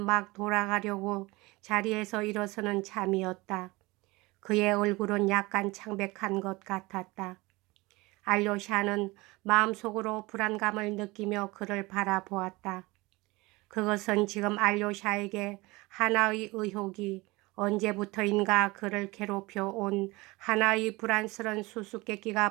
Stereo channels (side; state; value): left; quieter; 22.6 dB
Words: 막 돌아가려고 자리에서 일어서는 참이었다. 그의 얼굴은 약간 창백한 것 같았다. 알료샤는 마음속으로 불안감을 느끼며 그를 바라보았다. 그것은 지금 알료샤에게 하나의 의혹이 언제부터인가 그를 괴롭혀 온 하나의 불안스런